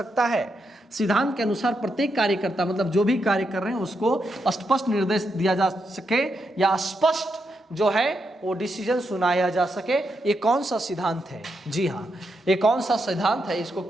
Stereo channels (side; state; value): both; normal; correlation 0.83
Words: है। सिद्धांत के अनुसार प्रत्येक कार्यकर्ता मतलब जो भी कार्य कर रहे हैं उसको स्पष्ट निर्देश दिया जा सके या स्पष्ट जो है वो डिसीजन सुनाया जा सके। ये कौन सा सिद्धांत है, जी हाँ, ये कौन सा सिद्धांत है, इसको